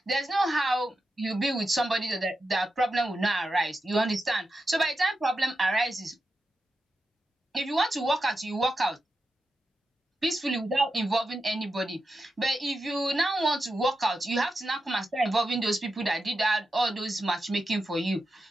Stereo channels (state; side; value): normal; both; correlation 0.89